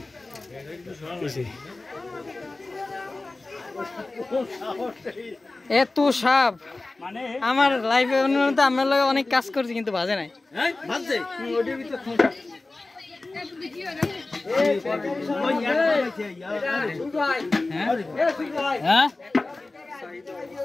এত সাপ আমার লাইফে আমার লগে অনেক কাজ করছি কিন্তু বাজে নাই হ্যাঁ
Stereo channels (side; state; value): right; quieter; 3.2 dB